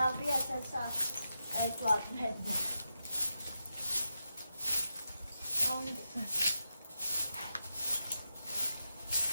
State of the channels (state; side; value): inverted; both; correlation -0.87